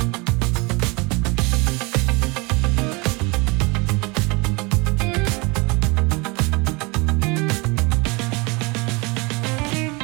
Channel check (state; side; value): quieter; left; 27.3 dB